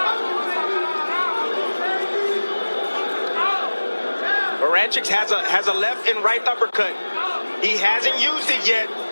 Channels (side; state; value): both; inverted; correlation -1.00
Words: Barynchyk has a left and right uppercut. He hasn't used it yet.